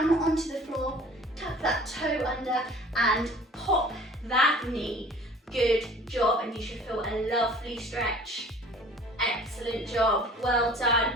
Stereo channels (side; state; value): both; normal; correlation 0.48